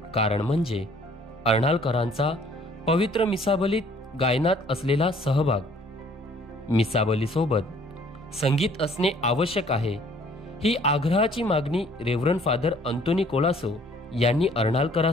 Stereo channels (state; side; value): normal; both; correlation 0.58